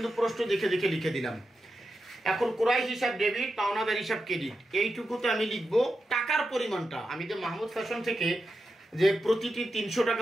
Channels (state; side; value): normal; both; correlation 0.88